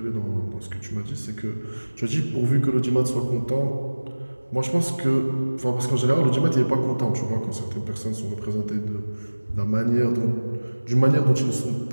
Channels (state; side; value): inverted; both; correlation -1.00